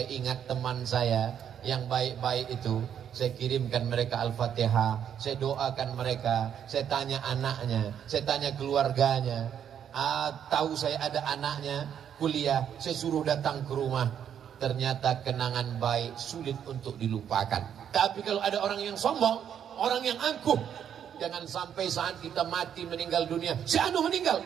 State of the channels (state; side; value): quieter; left; 8.9 dB